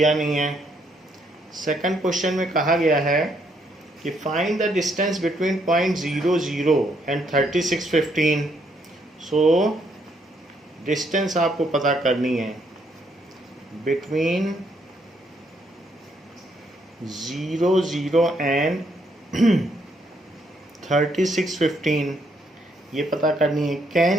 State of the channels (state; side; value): normal; both; correlation 0.72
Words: नहीं है। सेकंड क्वेश्चन में कहा गया है कि find the distance between point 00 and 3615। So distance आपको पता करनी है बिटवीन 00 एंड 3615, ये पता करनी है।